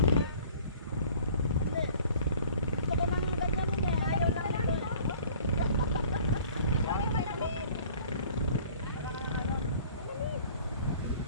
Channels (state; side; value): inverted; both; correlation -0.51